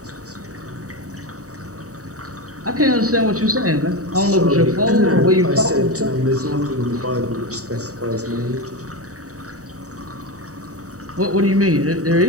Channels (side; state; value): left; late; 0.66 ms